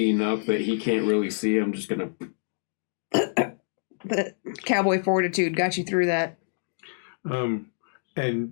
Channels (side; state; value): right; silent; digital silence